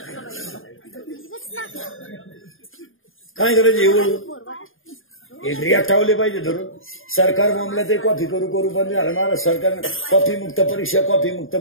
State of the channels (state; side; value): late; right; 0.59 ms